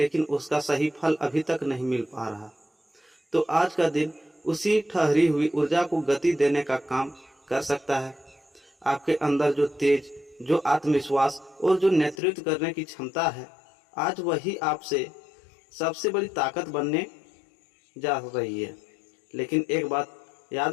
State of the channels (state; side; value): drops out; right; at 12.2 s